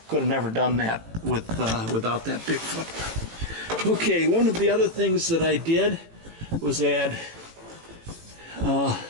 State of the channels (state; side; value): late; left; 18 ms